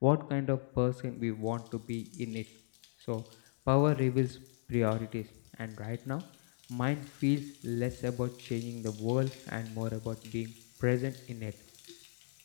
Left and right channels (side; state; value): right; silent; digital silence